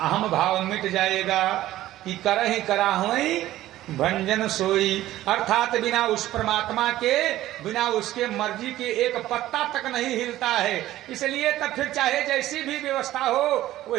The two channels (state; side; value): quieter; left; 14.7 dB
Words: भाव मिट जाएगा कि करहि कराहुई भंजन सोई, अर्थात बिना उस परमात्मा के, बिना उसके मर्जी के एक पत्ता तक नहीं हिलता है। इसलिए तब फिर चाहे जैसी भी व्यवस्था हो